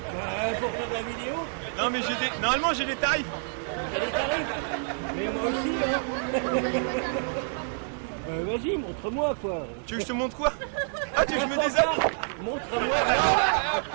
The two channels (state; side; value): silent; left; 59 dB below the other